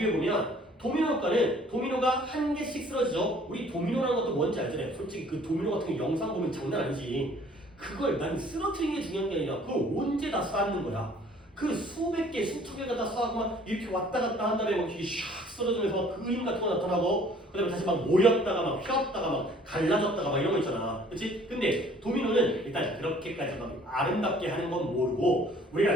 도미노 효과는 도미노가 한 개씩 쓰러지죠. 우리 도미노라는 것도 뭔지 알잖아요. 솔직히 그 도미노 같은 거 영상 보면 장난 아니지. 그걸 난 쓰러뜨리는 게 중요한 게 아니라 그걸 언제 다 쌓는 거야. 그 수백 개, 수천 개가 다 쌓고 막 이렇게 왔다 갔다 한 다음에 막 이게 샥 쓰러지면서 막 그림 같은 거 나타나고 그 다음에 다시 막 모였다가 막 휘었다가 막 갈라졌다가 막 이런 거 있잖아. 그치? 근데 도미노는 일단 그렇게까지 막 아름답게 하는 건 모르고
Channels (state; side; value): normal; both; correlation 0.55